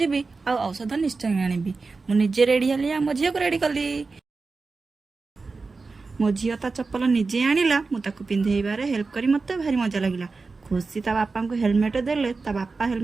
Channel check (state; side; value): quieter; left; 4.1 dB